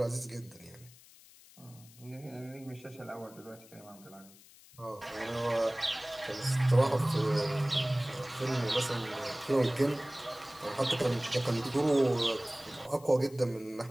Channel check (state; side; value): noise; left; hiss, 23 dB below the sound